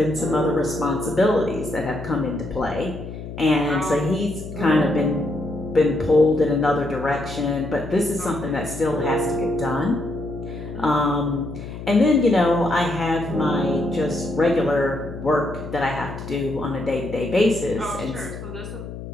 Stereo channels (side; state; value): left; noise; hum, 10 dB below the sound